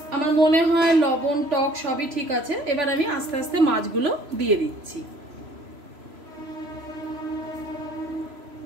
আমার মনে হয় লবণ টক সবই ঠিক আছে। এবার আমি আস্তে আস্তে মাছগুলো দিয়ে দিচ্ছি।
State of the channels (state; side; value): late; left; 3.0 ms